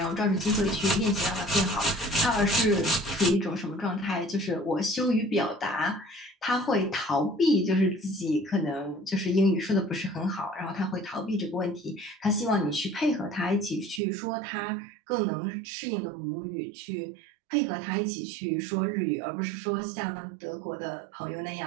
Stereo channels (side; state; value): left; drops out; at 14.0 s